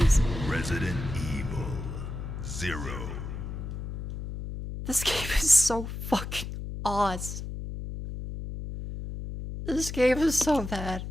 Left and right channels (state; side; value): noise; left; hum, 7 dB below the sound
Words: Resident Evil 0. This game is so fucking awesome. This game is so bad.